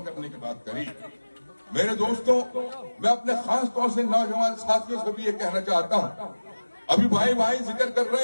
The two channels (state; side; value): inverted; both; correlation -1.00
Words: करने की बात करी। मेरे दोस्तों, मैं अपने खास तौर से नौजवान साथियों से भी ये कहना चाहता हूं, अभी भाई जिक्र कर